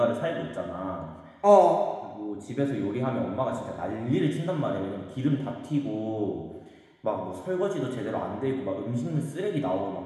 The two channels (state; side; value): identical; both; correlation 1.00